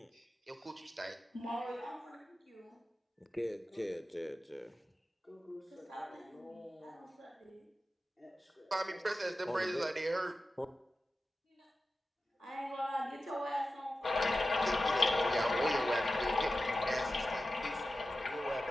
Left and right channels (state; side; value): normal; both; correlation 0.93